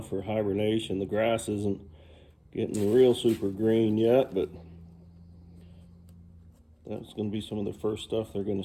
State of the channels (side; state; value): both; identical; correlation 1.00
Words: for hibernation. The grass isn't getting real super green yet, but that's going to be some of the first stuff they're going